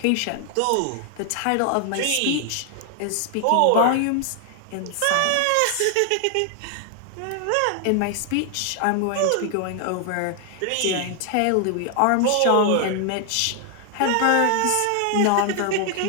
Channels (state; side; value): different; both; correlation 0.00